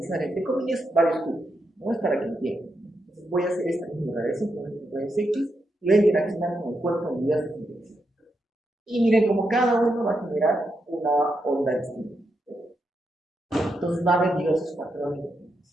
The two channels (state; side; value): normal; both; correlation 0.83